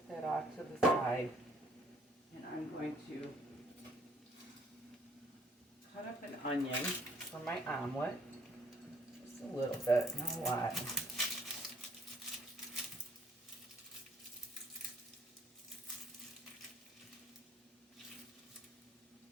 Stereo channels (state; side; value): normal; both; correlation 0.62